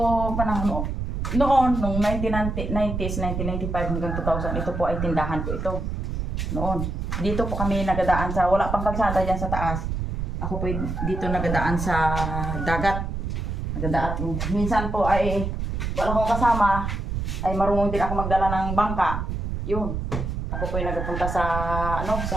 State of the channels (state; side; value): noise; right; rumble, 3 dB below the sound